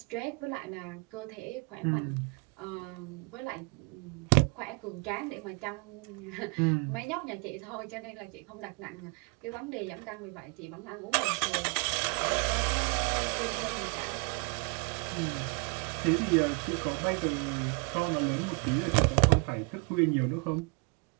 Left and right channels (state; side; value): quieter; left; 33.0 dB